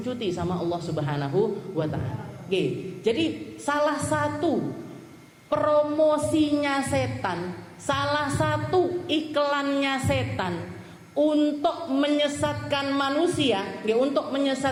sama Allah Subhanahu wa Ta'ala. Jadi salah satu promosinya setan, salah satu iklannya setan untuk menyesatkan manusia, untuk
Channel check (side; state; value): both; identical; correlation 1.00